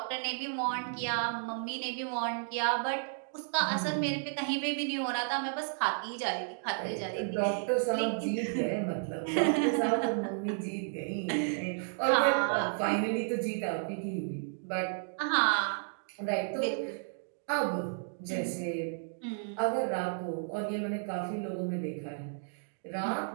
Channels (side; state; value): left; silent; digital silence